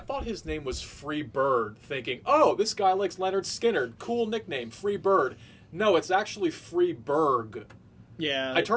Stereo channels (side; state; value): both; identical; correlation 1.00